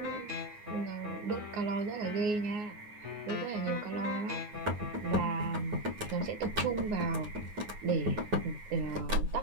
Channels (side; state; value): left; late; 9.6 ms